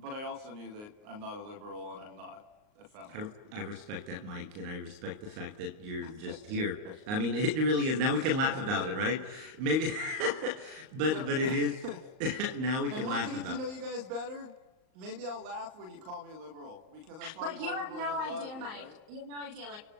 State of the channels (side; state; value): left; late; 38 ms